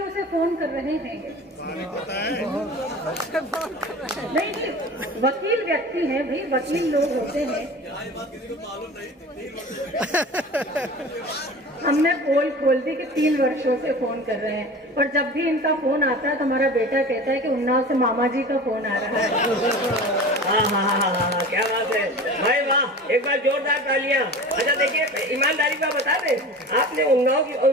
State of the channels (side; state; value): both; normal; correlation 0.36